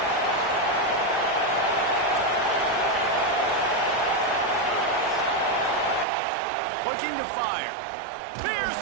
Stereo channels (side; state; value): left; drops out; at 6.1 s